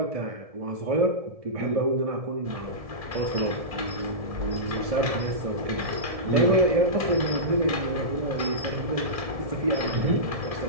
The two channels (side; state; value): left; late; 1.7 ms